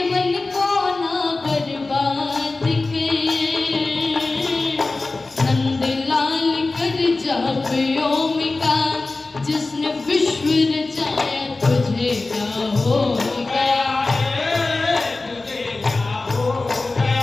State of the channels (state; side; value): quieter; right; 3.4 dB